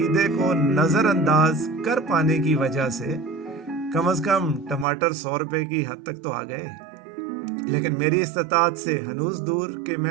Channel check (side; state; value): left; drops out; at 4.9 s